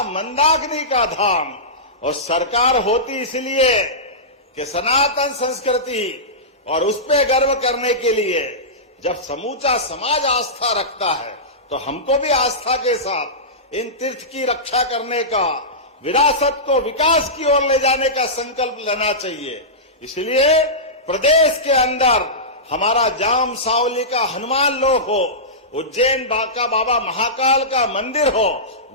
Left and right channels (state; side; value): normal; both; correlation -0.17